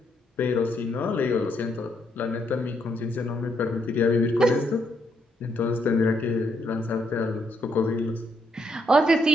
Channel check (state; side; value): normal; both; correlation 0.75